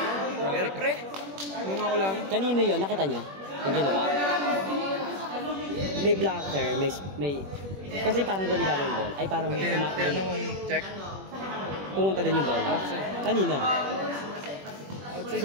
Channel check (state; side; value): late; left; 21 ms